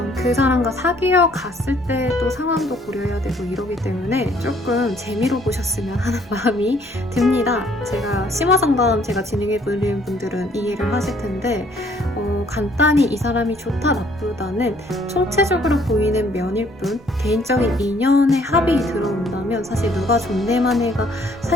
그 사람과 사귀어 갔을 때 또 상황도 고려해야 되고 이러기 때문에 조금 재미로 보셨으면 하는 마음이 듭니다. 제가 심화상담 제가 진행해보는 분들은 이해를 하실 텐데 간단히 이 사람이 좋다 나쁘다는 총체적으로 보이는 면일 뿐 개인적인 인연의 합이 들어온다면 사실 누가 좋네만 해가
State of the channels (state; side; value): normal; both; correlation 0.62